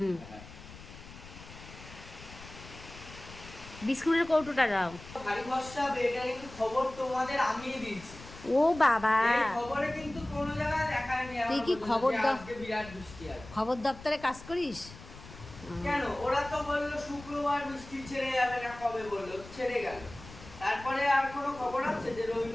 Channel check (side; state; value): left; noise; rumble, 17 dB below the sound